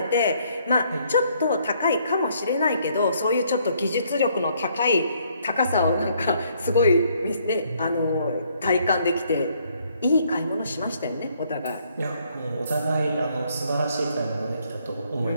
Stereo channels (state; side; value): inverted; both; correlation -0.68